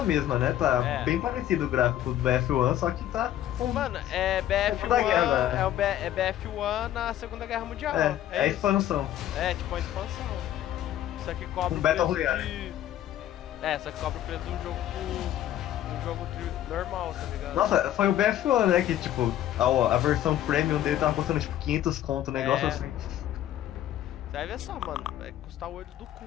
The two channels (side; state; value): right; quieter; 12.1 dB